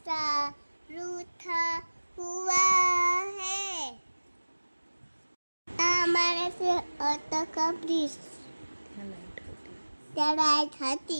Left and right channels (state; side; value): inverted; both; correlation -1.00